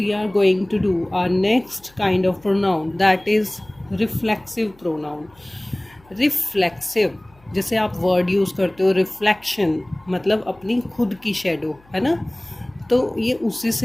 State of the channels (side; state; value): left; noise; hum, 29 dB below the sound